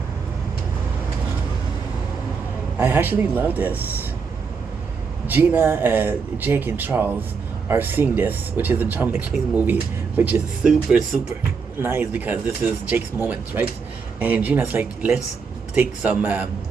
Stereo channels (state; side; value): quieter; left; 5.4 dB